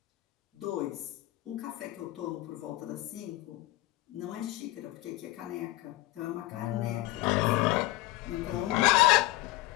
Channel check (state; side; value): quieter; right; 18.4 dB